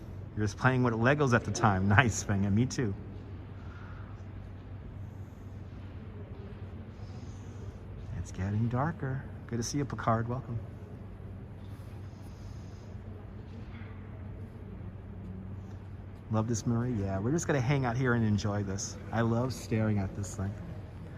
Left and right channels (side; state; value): both; identical; correlation 1.00